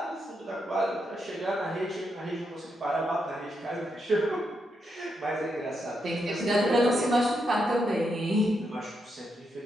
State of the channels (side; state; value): both; normal; correlation 0.82